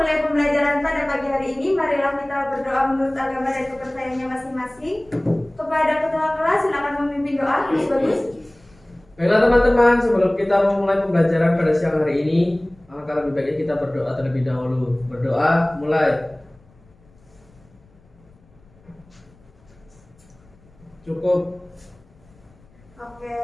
pembelajaran pada pagi hari ini, marilah kita berdoa menurut agama dan kepercayaannya masing-masing. Kepada ketua kelas silakan memimpin doa. Bagus. Baiklah teman-teman, sebelum kita memulai pembelajaran pada siang hari ini, alangkah lebih baiknya kita berdoa terlebih dahulu. Berdoa, mulai. Cukup. Oke.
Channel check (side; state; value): left; noise; rumble, 29 dB below the sound